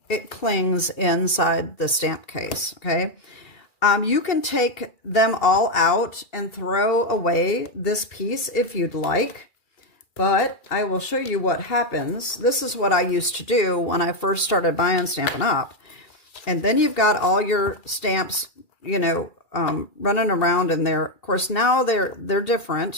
it clings inside the stamp case, okay? You can take them all out and throw away this piece if you'd like, but I will show you what happens. This is what I used to do when I first started buying Stampin' Up. And then you've got all your stamps, you know, running around in there. Of course, now they're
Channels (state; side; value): late; right; 2.3 ms